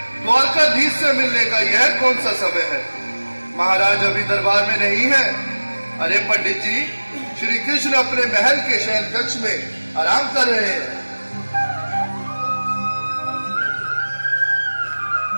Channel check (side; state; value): both; inverted; correlation -1.00